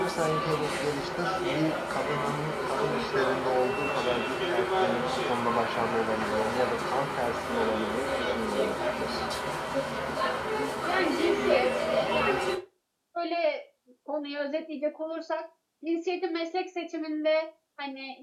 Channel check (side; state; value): both; identical; correlation 1.00